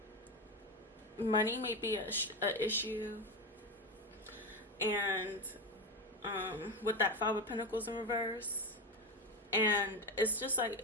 money may be a issue, and with that Five of Pentacles in reverse, and it's just like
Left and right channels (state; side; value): normal; both; correlation 0.16